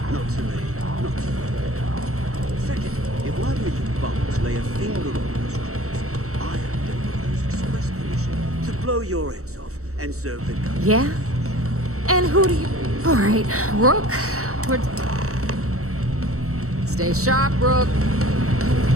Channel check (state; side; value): late; left; 0.64 ms